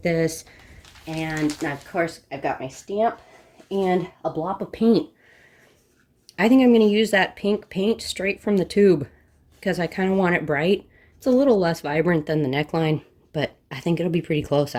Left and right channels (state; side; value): identical; both; correlation 1.00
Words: this. And now of course I've got my stamp and a blob of paint. I think I'm going to use that pink paint straight from the tube because I kind of want it bright. It's a little less vibrant than the neckline, but I think it'll be pretty close